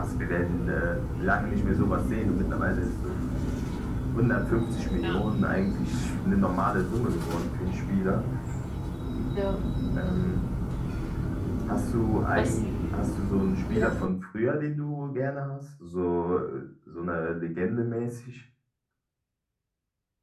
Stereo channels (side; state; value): both; identical; correlation 1.00